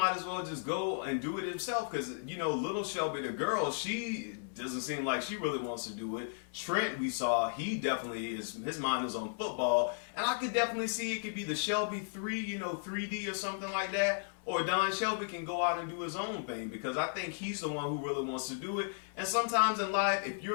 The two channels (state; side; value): silent; right; 55 dB below the other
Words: as well just go and do it himself, because little Shelby, the girl, she doesn't seem like she really wants to do it. Trent, we saw, he definitely his mind is on football, and I could definitely see it could be the Shelby 3, 3D or something like that, or Don Shelby can go out and do his own thing, because I think he's the one who really wants to do it. And sometimes in life, if you're